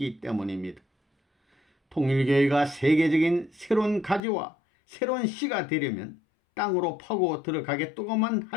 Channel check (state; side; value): drops out; right; at 4.2 s